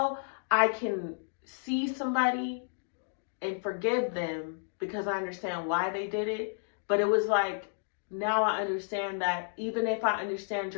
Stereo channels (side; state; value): right; silent; digital silence